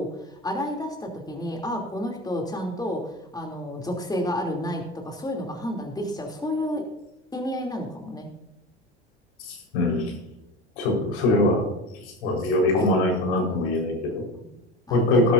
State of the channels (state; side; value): normal; both; correlation 0.29